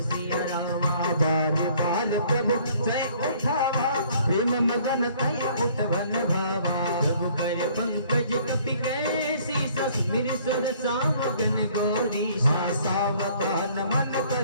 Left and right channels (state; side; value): inverted; both; correlation -0.58